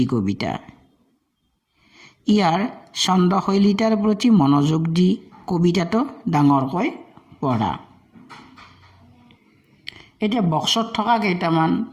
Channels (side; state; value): both; identical; correlation 1.00